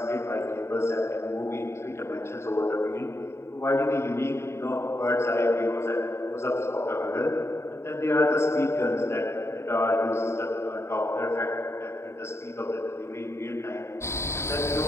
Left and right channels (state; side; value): late; right; 0.13 ms